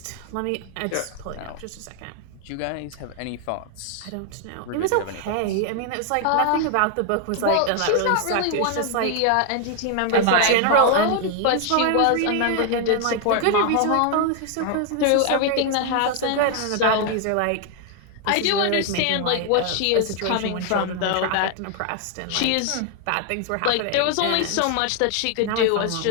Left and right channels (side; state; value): both; different; correlation 0.00